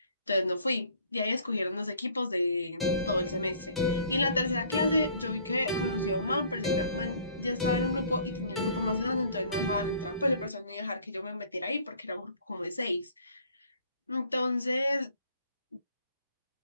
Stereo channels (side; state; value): both; inverted; correlation -0.56